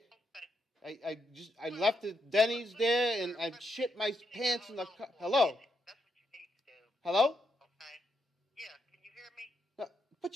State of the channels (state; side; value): normal; both; correlation 0.80